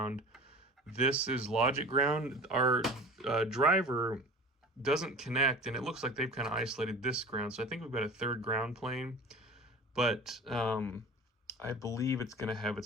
This is logic ground. Our driver doesn't connect, and it looks like they've kind of isolated this ground. So I think we've got a third ground plane, but I believe it's going to have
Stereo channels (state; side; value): normal; both; correlation 0.38